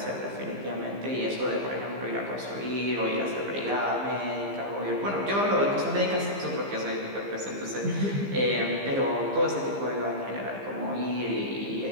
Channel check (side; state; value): left; late; 15 ms